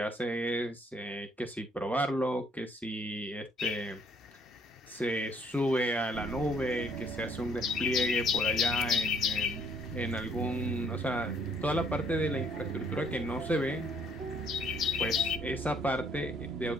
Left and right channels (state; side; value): normal; both; correlation 0.64